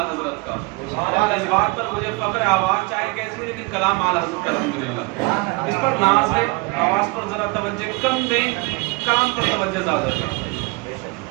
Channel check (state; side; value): quieter; left; 26.4 dB